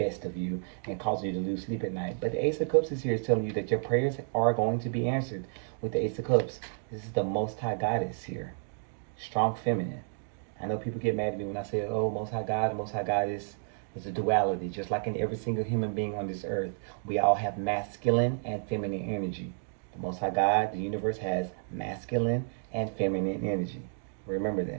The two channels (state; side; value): silent; left; digital silence